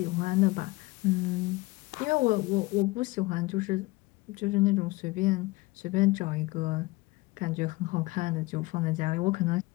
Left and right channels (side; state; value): right; quieter; 21.7 dB